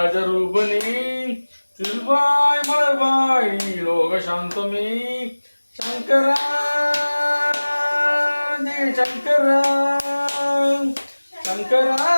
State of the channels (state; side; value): inverted; both; correlation -1.00